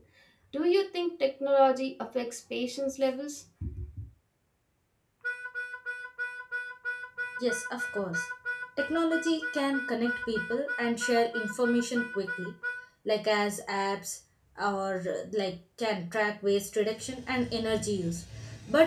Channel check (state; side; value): identical; both; correlation 1.00